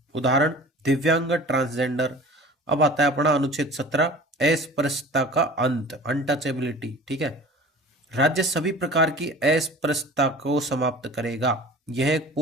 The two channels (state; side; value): normal; both; correlation 0.42